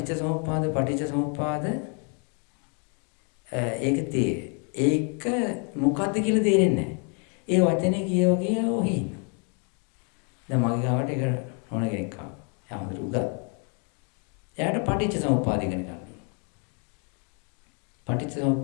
සමුප්පාද ඒක මොකද්ද කියලා තේරෙන්නේ නැහැ. ඒ වචනේ කියවගේ ඔහි ඉන්න. දැන් මගේ ගාවට එක ඕන කෙනෙක් ආවා. එයා හොඳට උගත්. එයාට පටිච්ච සමුප්පාද ඉගෙන ගන්න ඕන.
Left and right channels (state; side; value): quieter; right; 38.4 dB